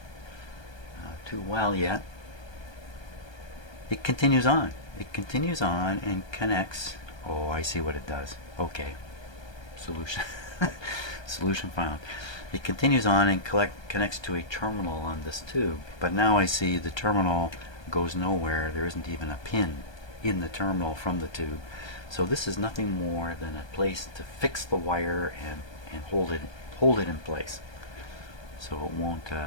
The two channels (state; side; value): late; right; 1.2 ms